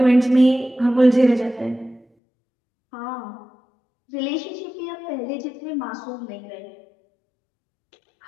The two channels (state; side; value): drops out; right; at 2.1 s